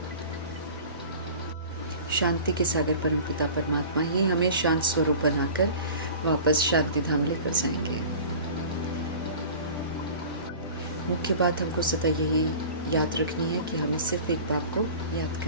शांति के सागर परमपिता परमात्मा ही हमें शांत स्वरूप बनाकर वापस शांति धाम लेकर जाएंगे। मुख्य बात हमको सदा यही याद रखनी है कि हमें सिर्फ एक बात को याद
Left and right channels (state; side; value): inverted; both; correlation -0.40